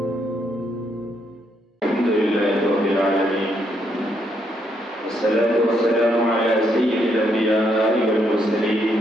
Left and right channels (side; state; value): both; normal; correlation 0.75